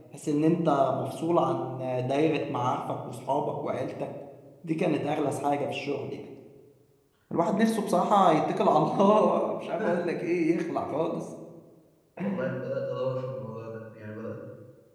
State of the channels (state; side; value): identical; both; correlation 1.00